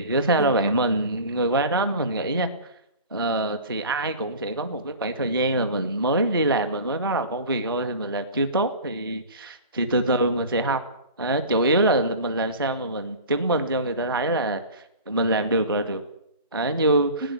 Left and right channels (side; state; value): both; inverted; correlation -0.38